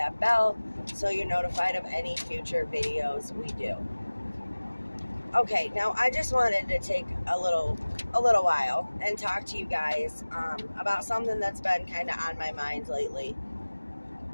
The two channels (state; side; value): inverted; both; correlation -1.00